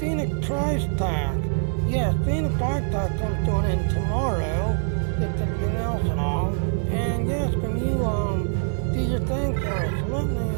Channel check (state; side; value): silent; left; digital silence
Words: price tag, yes, Phoenix price tag comes to an end tomorrow, that's everything else and all. And yes, can you do your thing for us? Let me